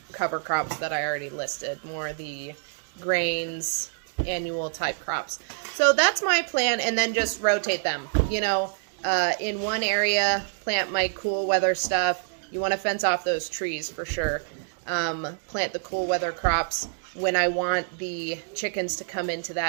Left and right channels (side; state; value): left; silent; digital silence